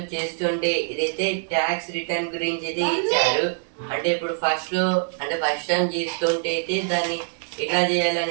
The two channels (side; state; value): left; silent; digital silence